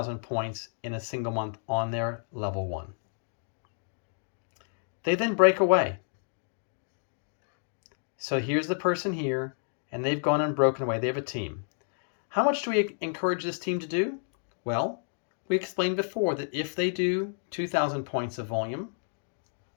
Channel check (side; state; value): right; silent; digital silence